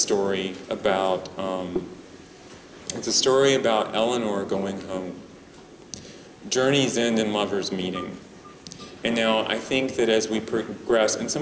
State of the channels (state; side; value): identical; both; correlation 1.00